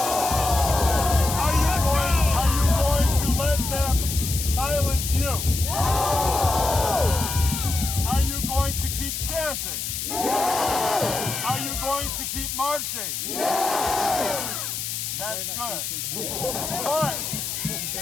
Are you going to let them silence you? No! Are you going to keep chanting? Yes! Are you going to keep marching? Yes! That's good. Alex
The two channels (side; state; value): left; noise; hiss, 4 dB below the sound